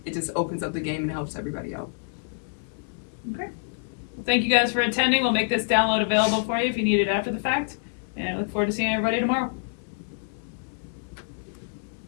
just opens up the game and helps everybody out. Okay. Well, thank you guys for attending. We'll make this download available for you if you need it after the fact. And I look forward to seeing everybody tomorrow.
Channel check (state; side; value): silent; right; digital silence